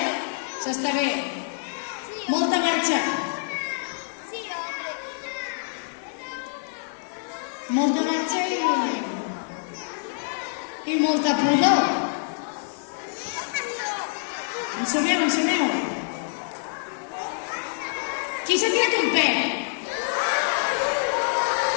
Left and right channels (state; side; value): silent; right; digital silence